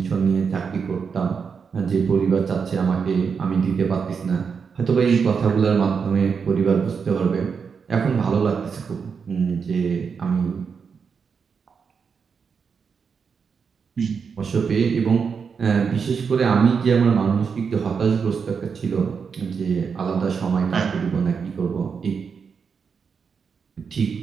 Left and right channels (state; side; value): quieter; left; 6.0 dB